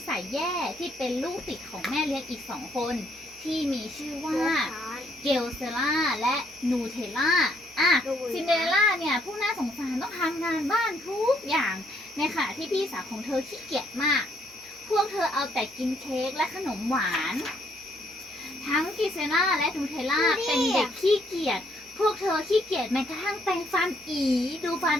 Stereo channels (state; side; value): noise; right; hum, 28 dB below the sound